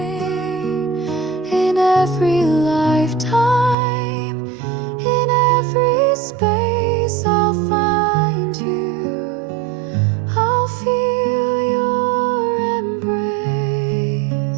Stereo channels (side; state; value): left; drops out; at 3.8 s